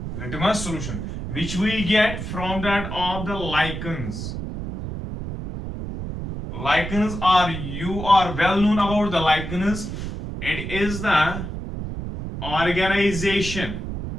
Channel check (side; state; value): right; noise; rumble, 6 dB below the sound